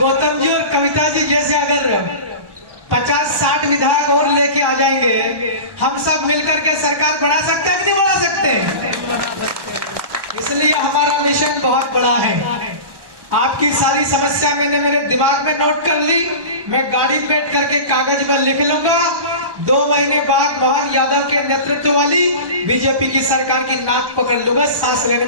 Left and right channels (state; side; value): late; left; 1.1 ms